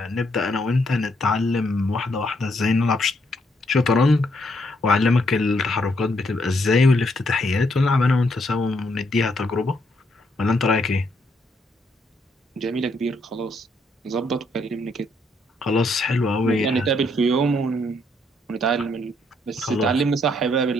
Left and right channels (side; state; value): both; normal; correlation 0.73